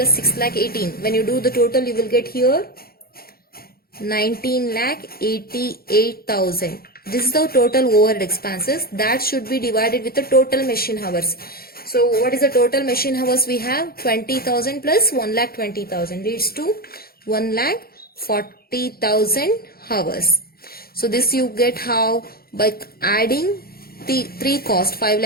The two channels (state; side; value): late; right; 0.44 ms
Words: 6,18,000. When you do the total, you will get here 19,88,000. This is the total overhead expenses. That should be divided with the total machine hours. So what is the total machine hours we have? 20,000 plus 1,20,000 leads to 1,40,000 hours. So this you get how? By adding the three cost,